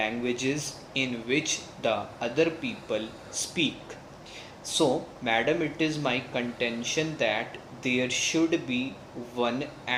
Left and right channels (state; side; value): identical; both; correlation 1.00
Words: in which the other people speak. So, madam, it is my contention that there should be one